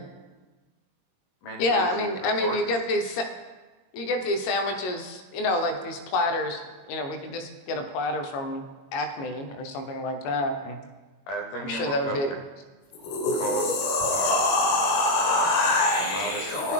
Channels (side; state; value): right; late; 22 ms